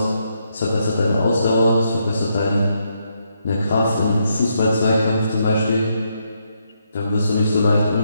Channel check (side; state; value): both; inverted; correlation -0.79